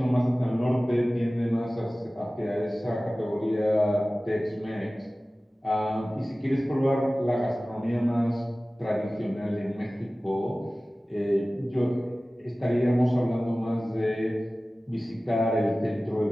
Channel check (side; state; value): both; normal; correlation 0.97